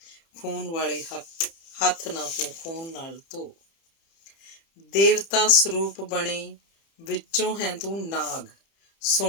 ਖੂਨ ਵਾਲੇ ਹੱਥ ਨਾ ਤੂੰ ਖੂਨ ਨਾਲ ਧੋ। ਦੇਵਤਾ ਸਰੂਪ ਬਣੇ, ਵਿੱਚੋਂ ਹੈ ਤੂੰ ਨਾਗ।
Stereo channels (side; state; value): right; late; 30 ms